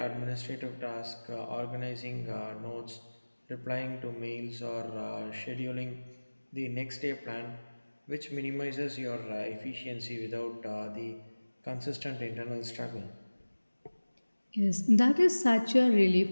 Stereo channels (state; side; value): inverted; both; correlation -1.00